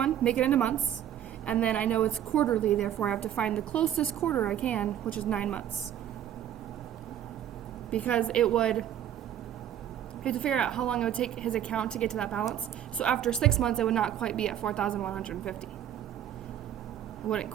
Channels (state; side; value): quieter; left; 10.6 dB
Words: make it into months, and then I know it's quarterly, therefore I have to find the closest quarter I can, which is 9 months. Because you have to figure out how long it would take his account to get to that balance. So after 6 months, it would not quite be at 4,150. It wouldn't